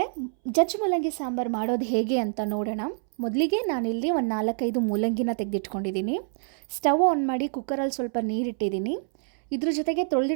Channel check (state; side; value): silent; left; 60 dB below the other